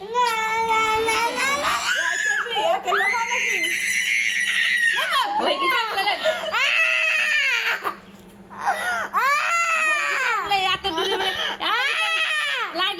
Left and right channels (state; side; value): identical; both; correlation 1.00